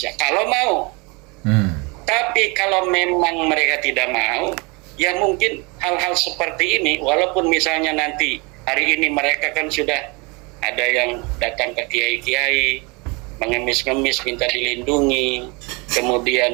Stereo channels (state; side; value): quieter; left; 28.6 dB